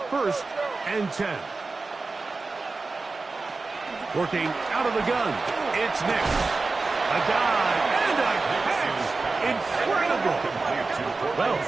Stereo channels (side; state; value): left; quieter; 3.8 dB